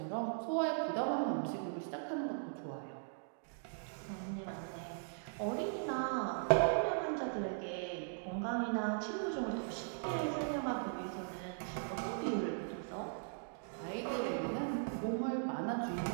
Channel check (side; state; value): left; silent; digital silence